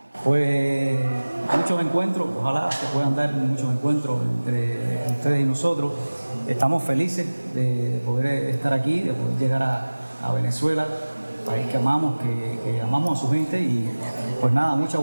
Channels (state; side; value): inverted; both; correlation -1.00